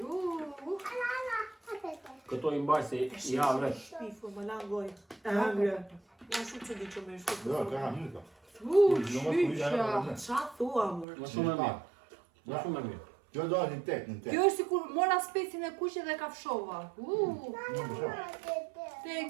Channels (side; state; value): left; drops out; at 11.1 s